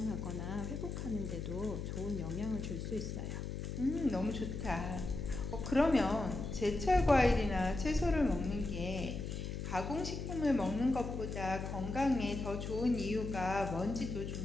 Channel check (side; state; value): left; noise; hum, 5 dB below the sound